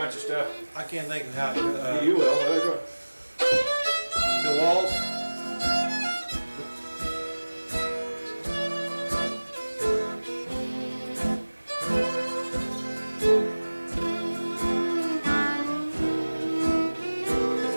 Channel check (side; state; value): both; inverted; correlation -1.00